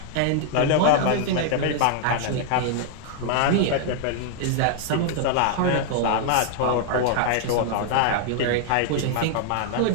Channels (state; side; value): different; both; correlation 0.00